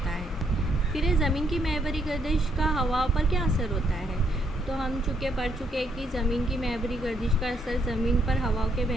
है। फिर ज़मीन की महवरी गर्दिश का हवाओं पर क्या असर होता है? तो हम पढ़ चुके हैं कि ज़मीन की महवरी गर्दिश का असर ज़मीन पर हवाओं के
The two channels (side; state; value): both; normal; correlation 0.73